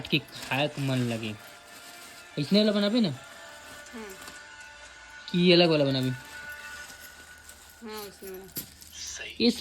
के खाए को मन लगे। इसने वाला बनाबे ना कि अलग वाला बनाबे। ये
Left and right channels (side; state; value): both; identical; correlation 1.00